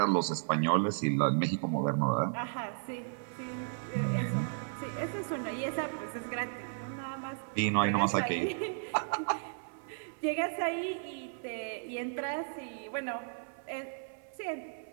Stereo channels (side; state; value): left; silent; 55 dB below the other